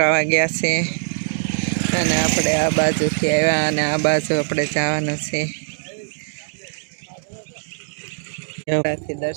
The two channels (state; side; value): silent; left; digital silence